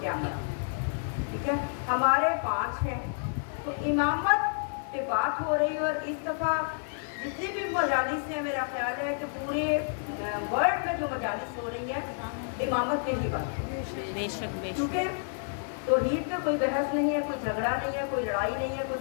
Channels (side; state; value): right; silent; digital silence